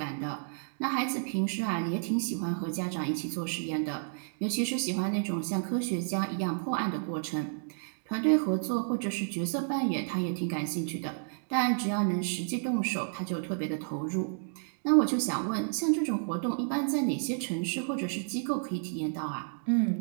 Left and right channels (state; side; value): silent; left; digital silence